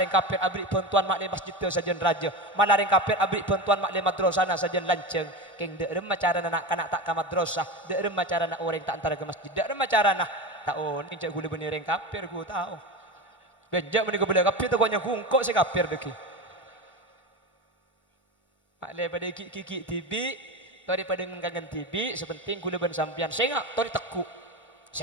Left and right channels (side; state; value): both; normal; correlation 0.23